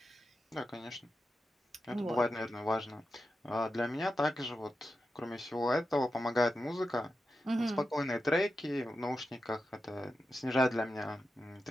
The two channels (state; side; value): normal; both; correlation 0.90